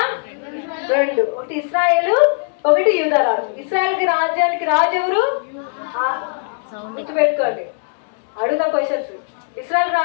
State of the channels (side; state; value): right; silent; digital silence